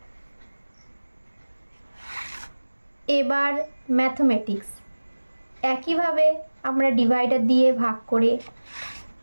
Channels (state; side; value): inverted; both; correlation -1.00